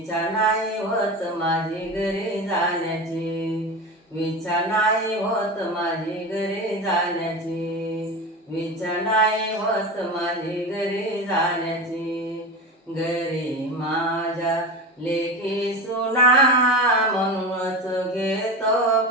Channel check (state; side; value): normal; both; correlation 0.25